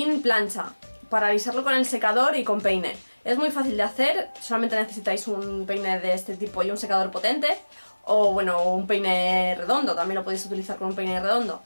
plancha, para alisarlo con el secador y con peine. Es muy fácil de hacer, solamente necesitáis un peine de este tipo y un secador potente, o bueno, un peine redondo, también lo podéis utilizar con un peine redondo.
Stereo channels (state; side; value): inverted; both; correlation -1.00